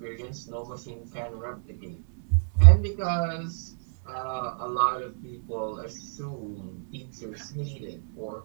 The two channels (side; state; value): left; silent; digital silence